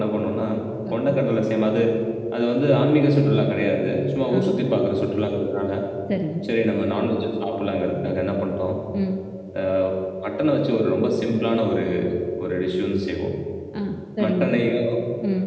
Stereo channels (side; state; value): both; identical; correlation 1.00